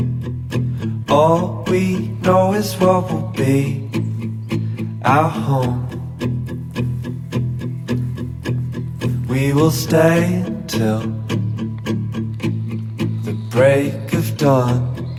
All we know is what will be our home. We will stay until the break of dawn.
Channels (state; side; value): identical; both; correlation 1.00